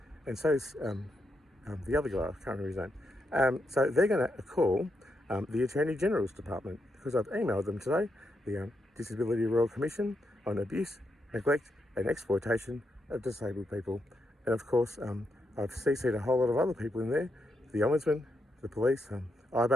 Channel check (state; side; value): normal; both; correlation 0.82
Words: And so is the other guy, I can't remember his name. So they're going to call the Attorney General's Department, because I've emailed them today, the Disability Royal Commission on abuse, neglect and exploitation of disabled people. And of course, I've CC'd a whole lot of other people in there, the Ombudsman, the police,